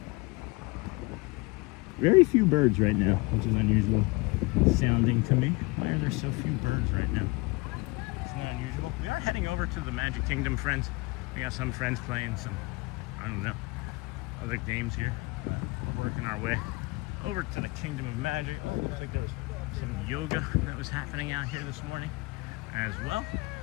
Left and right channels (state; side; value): quieter; right; 25.2 dB